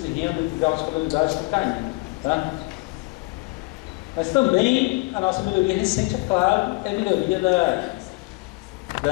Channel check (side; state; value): right; quieter; 25.9 dB